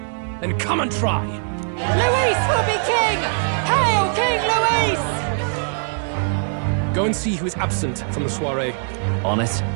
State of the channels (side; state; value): left; silent; 63 dB below the other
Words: then come and try. Luis will be king! Hail King Luis! Go and see who is absent from the soiree. On it.